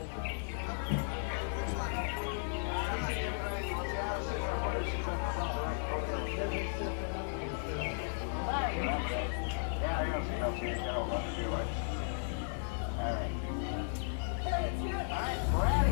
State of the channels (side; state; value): right; silent; digital silence